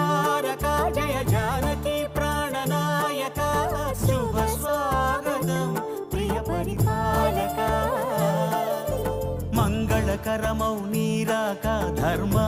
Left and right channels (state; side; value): identical; both; correlation 1.00